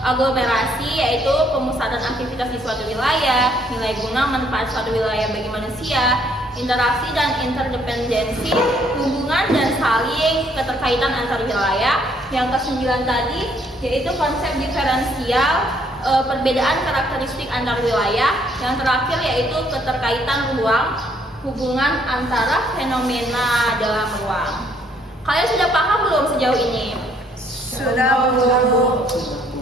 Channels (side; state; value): both; normal; correlation 0.66